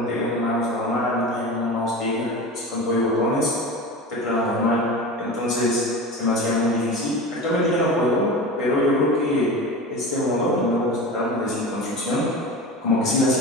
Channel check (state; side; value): normal; both; correlation 0.30